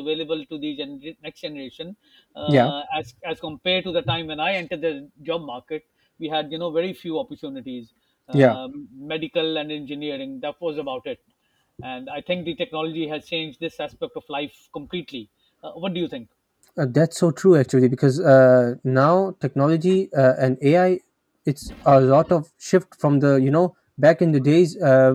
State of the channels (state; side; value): identical; both; correlation 1.00